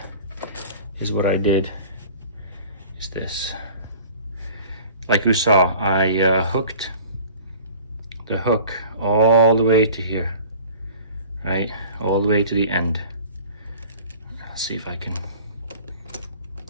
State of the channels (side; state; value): both; inverted; correlation -0.44